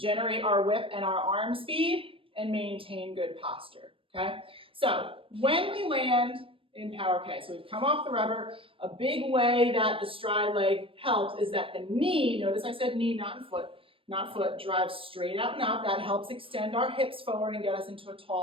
our whip and our arm speed, and maintain good posture. Okay? So when we land in Power K, so we've come off the rubber, a big way that the stride leg helps is that the knee, notice I said knee, not foot, drives straight out and up. That helps extend our hips forward and get us into a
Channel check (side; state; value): left; late; 0.26 ms